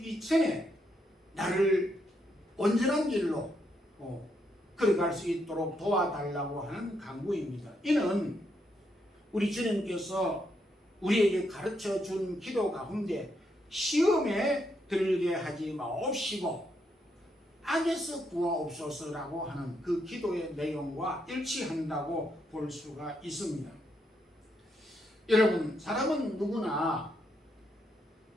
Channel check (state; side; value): normal; both; correlation 0.78